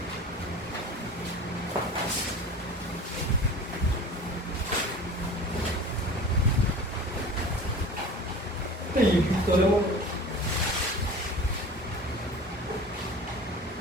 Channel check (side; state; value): both; normal; correlation 0.39